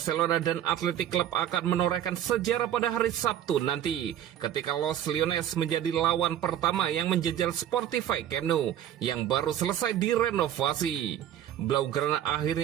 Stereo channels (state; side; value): quieter; left; 10.9 dB